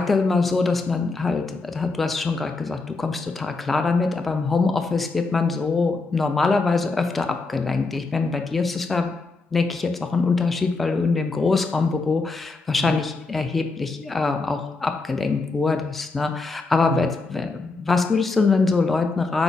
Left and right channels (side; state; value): right; quieter; 3.7 dB